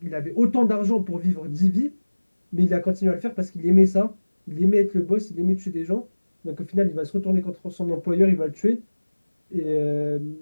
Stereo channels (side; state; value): both; inverted; correlation -1.00